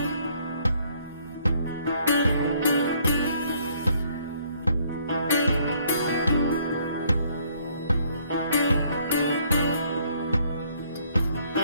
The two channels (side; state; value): both; inverted; correlation -0.64